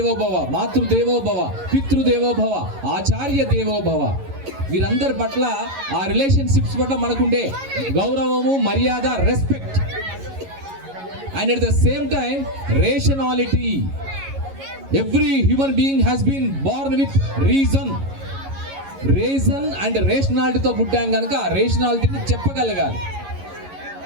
మాతృదేవోభవ, పితృదేవోభవ, ఆచార్య దేవోభవ, వీరందరి పట్ల ఆ రిలేషన్షిప్స్ పట్ల మనకుండే గౌరవము, మర్యాద, respect. And at the same time rationality. Every human being has been born with reason and రేషనాలిటీతో పుట్టాం కనుక ఆ రేషనాలిటీని చెప్పగలగాలి.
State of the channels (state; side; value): late; left; 11 ms